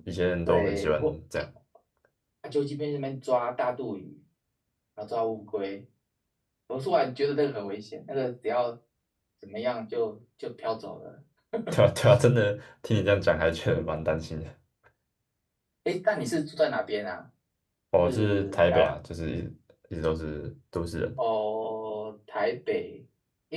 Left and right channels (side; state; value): both; identical; correlation 1.00